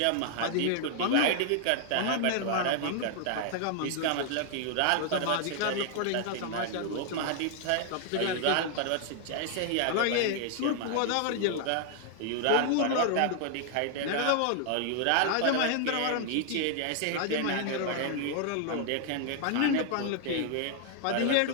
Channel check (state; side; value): different; both; correlation 0.00